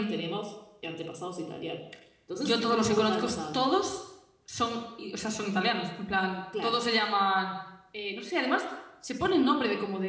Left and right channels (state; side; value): identical; both; correlation 1.00